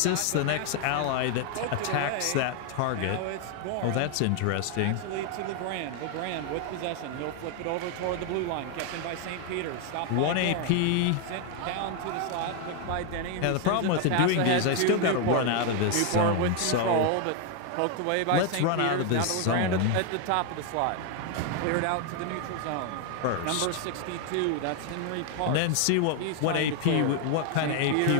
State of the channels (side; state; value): both; different; correlation 0.01